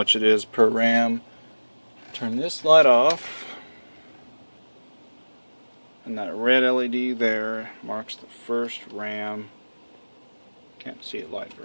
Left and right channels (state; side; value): inverted; both; correlation -1.00